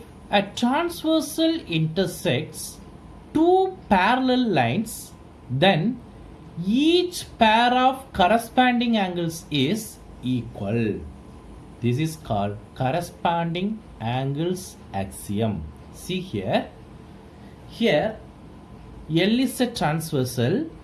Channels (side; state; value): both; identical; correlation 1.00